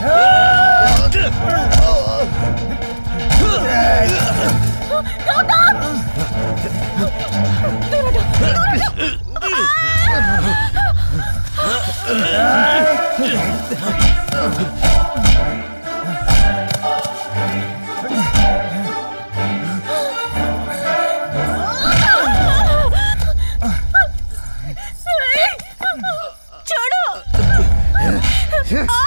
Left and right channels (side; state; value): both; inverted; correlation -1.00